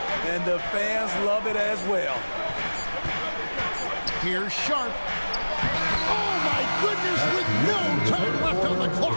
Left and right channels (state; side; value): inverted; both; correlation -1.00